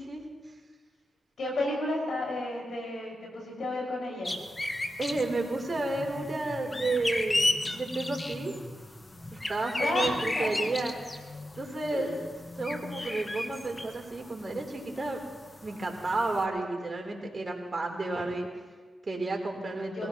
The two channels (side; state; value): both; normal; correlation 0.89